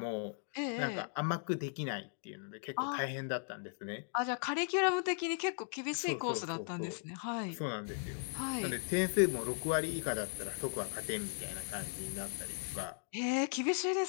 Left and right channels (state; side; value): silent; right; 53 dB below the other